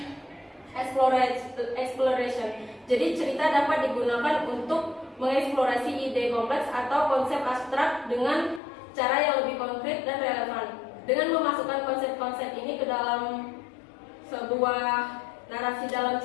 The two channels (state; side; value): drops out; right; at 8.6 s